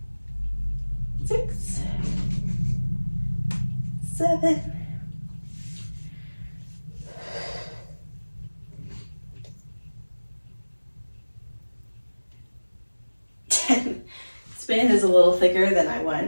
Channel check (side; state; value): both; inverted; correlation -1.00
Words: Six, 7, 10. This band is a little thicker than I